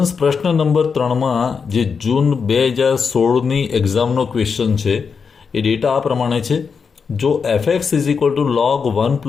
પ્રશ્ન નંબર 3માં જે જૂન 2016ની એક્ઝામનો ક્વેશ્ચન છે એ ડેટા આ પ્રમાણે છે. જો fx is equal to log 1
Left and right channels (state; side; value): quieter; right; 5.8 dB